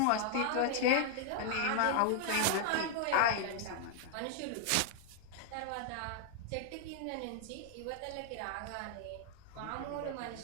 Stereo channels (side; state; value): both; different; correlation 0.00